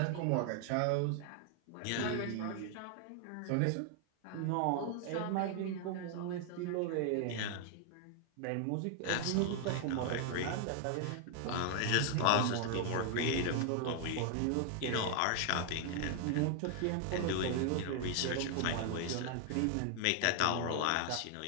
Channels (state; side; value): different; both; correlation 0.00